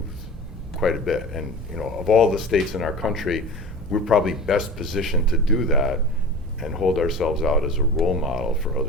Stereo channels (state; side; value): normal; both; correlation 0.35